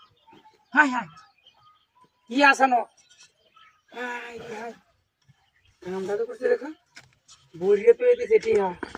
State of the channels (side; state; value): both; identical; correlation 1.00